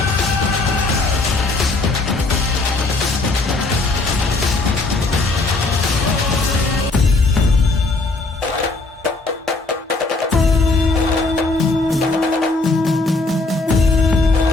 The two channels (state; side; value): quieter; right; 3.3 dB